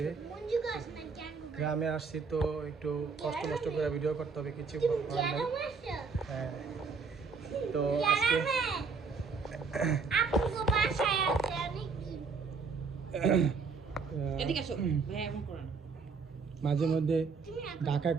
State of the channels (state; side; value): quieter; left; 5.0 dB